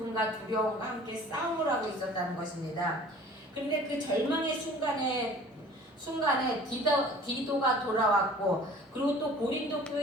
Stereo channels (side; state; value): both; normal; correlation 0.47